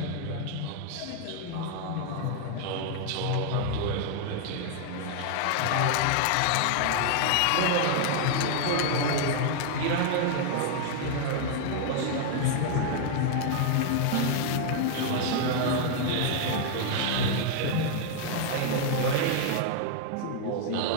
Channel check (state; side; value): different; both; correlation 0.00